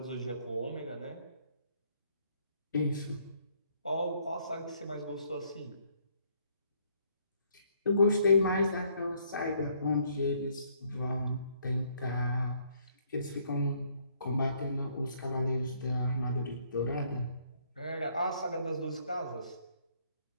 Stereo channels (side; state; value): both; inverted; correlation -0.67